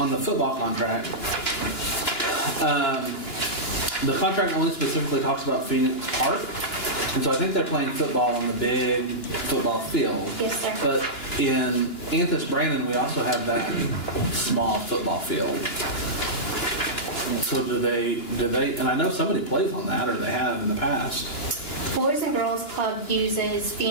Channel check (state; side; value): late; right; 2.9 ms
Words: the football contract. The contract only specifically talks about Phoenix Park, and so I think they're playing football on the big football field. Yes, sir. But in Anthus Brandon, we also have that small football field. So do they, and I know somebody plays on that, or they have in the past. Boys and Girls Club uses